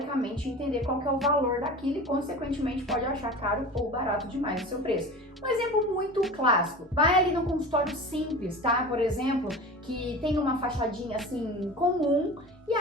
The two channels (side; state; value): both; normal; correlation 0.34